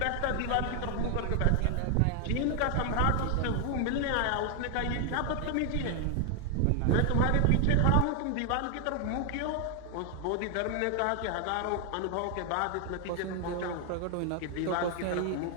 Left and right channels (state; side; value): different; both; correlation 0.00